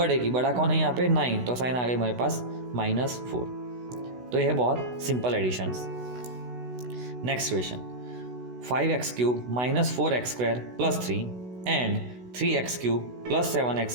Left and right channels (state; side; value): late; left; 16 ms